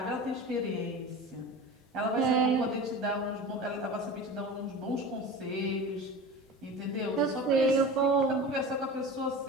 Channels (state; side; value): normal; both; correlation 0.33